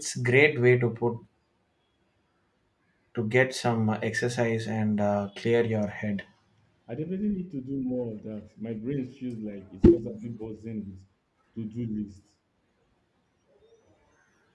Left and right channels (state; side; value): identical; both; correlation 1.00